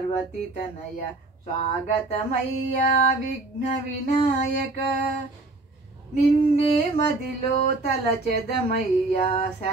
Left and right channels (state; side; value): quieter; left; 3.1 dB